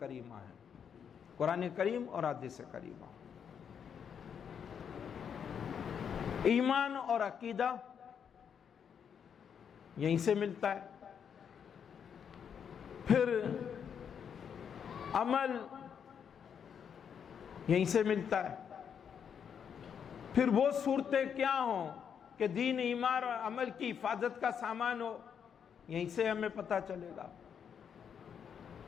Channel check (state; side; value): quieter; right; 7.6 dB